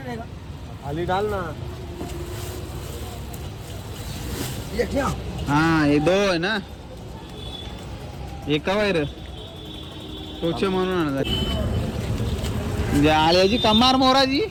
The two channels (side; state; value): both; identical; correlation 1.00